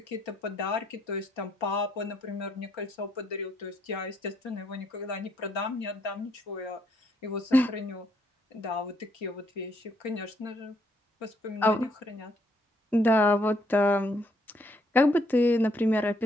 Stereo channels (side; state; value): both; normal; correlation 0.71